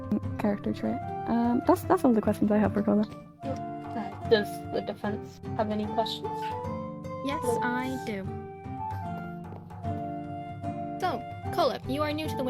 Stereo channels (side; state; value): both; identical; correlation 1.00